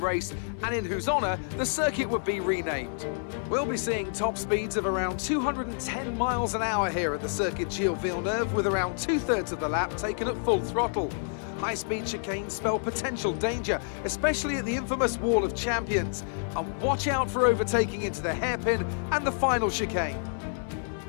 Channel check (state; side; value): silent; right; digital silence